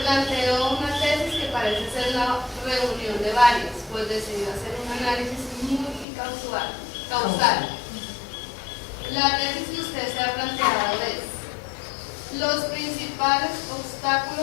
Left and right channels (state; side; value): drops out; right; at 6.1 s